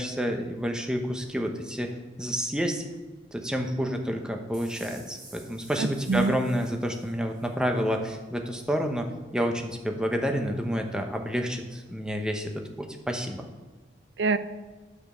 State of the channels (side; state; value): both; normal; correlation 0.74